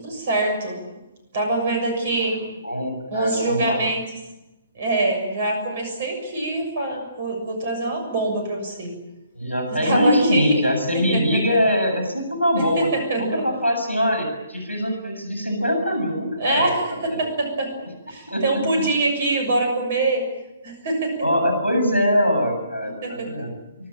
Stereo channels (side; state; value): both; inverted; correlation -0.66